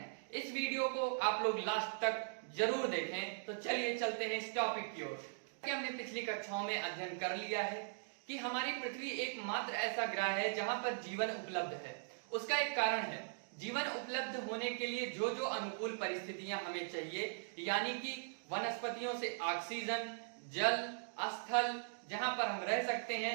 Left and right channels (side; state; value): left; silent; digital silence